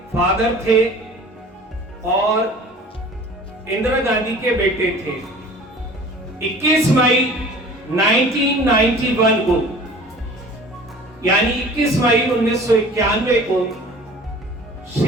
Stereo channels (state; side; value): normal; both; correlation 0.45